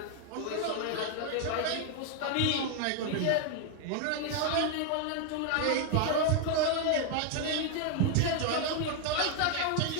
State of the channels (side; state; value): both; different; correlation 0.00